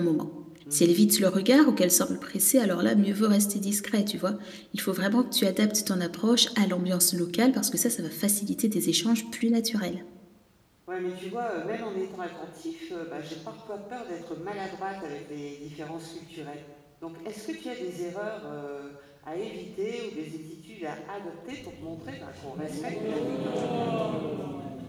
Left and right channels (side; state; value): both; identical; correlation 1.00